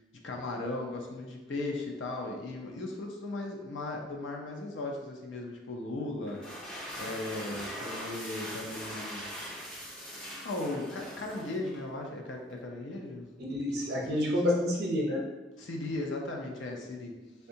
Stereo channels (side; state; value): both; normal; correlation 0.54